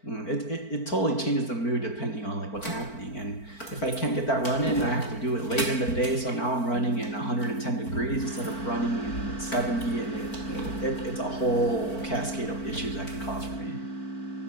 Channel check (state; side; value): late; right; 4.5 ms